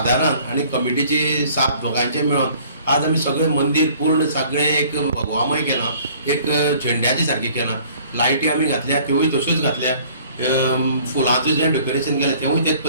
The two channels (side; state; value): both; inverted; correlation -0.54